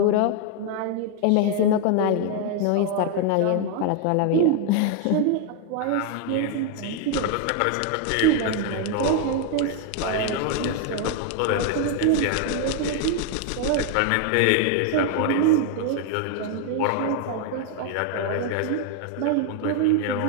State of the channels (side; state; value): both; different; correlation 0.00